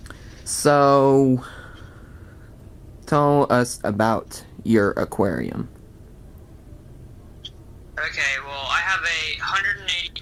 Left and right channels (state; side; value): identical; both; correlation 1.00